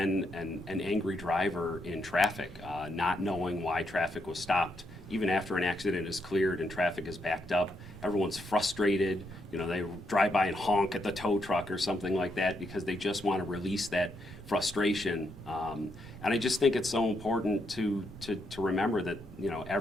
an angry driver in traffic, not knowing why traffic was stopped. Even after an accident is cleared and traffic is backed up, everyone's frustrated. You know, they drive by and honk at the tow truck or something like that because they just want to release that frustration. And I just think it's so important to remember that, you know,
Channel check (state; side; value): normal; both; correlation 0.79